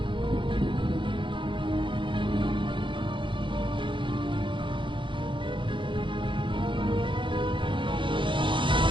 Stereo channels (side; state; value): left; late; 0.24 ms